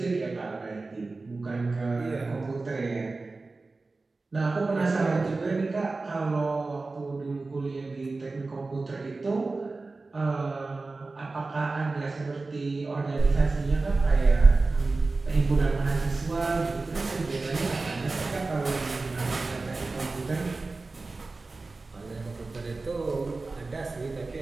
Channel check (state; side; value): quieter; left; 3.6 dB